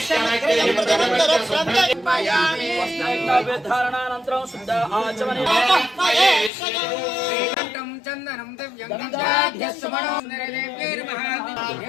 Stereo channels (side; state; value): right; drops out; at 6.5 s